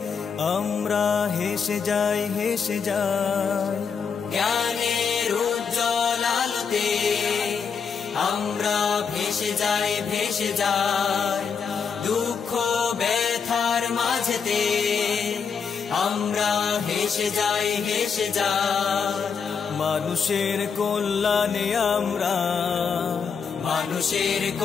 আমরা হেসে যাই, হেসে যাই। জ্ঞানের উজ্জ্বল আলোতে আমরা ভেসে যাই, ভেসে যাই দুঃখ ব্যথার মাঝেতে। আমরা হেসে যাই, হেসে যাই। মানুষের কল্যাণে আমরা, মানুষের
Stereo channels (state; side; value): quieter; right; 6.1 dB